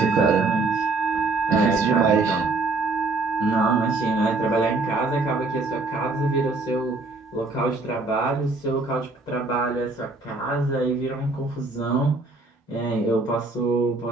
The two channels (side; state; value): left; quieter; 3.4 dB